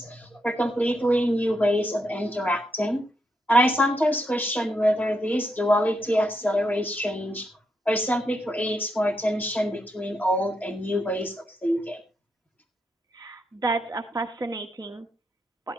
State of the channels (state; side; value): normal; both; correlation 0.81